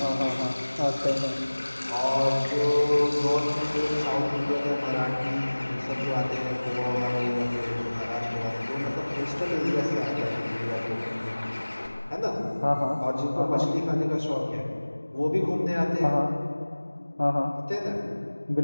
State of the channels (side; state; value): both; inverted; correlation -1.00